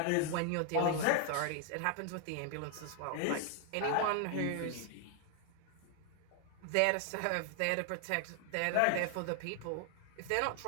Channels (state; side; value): different; both; correlation 0.00